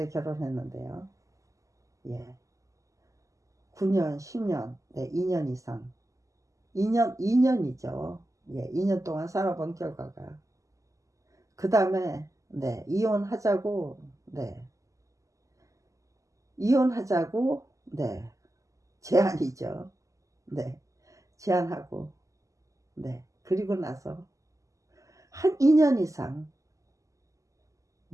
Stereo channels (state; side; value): late; left; 0.16 ms